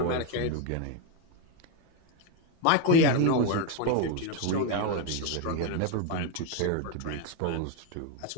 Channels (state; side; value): different; both; correlation 0.02